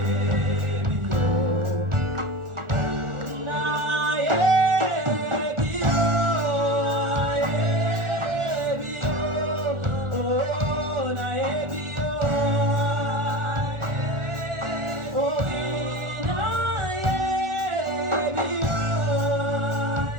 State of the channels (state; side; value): late; left; 1.4 ms